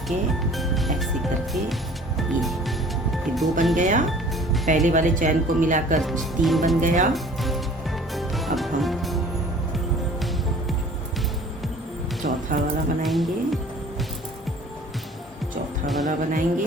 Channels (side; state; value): both; normal; correlation 0.49